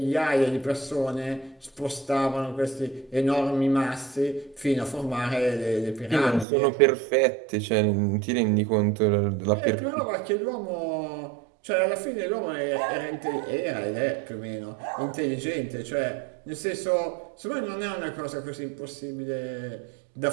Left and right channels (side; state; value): left; drops out; at 6.5 s